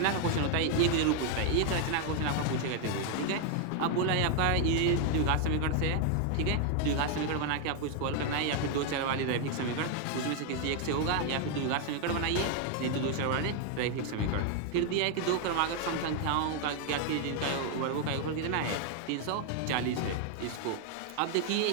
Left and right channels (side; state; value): both; different; correlation 0.00